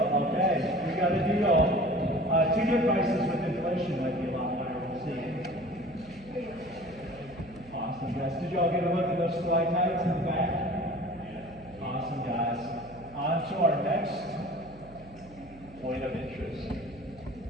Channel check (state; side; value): noise; right; hum, 21 dB below the sound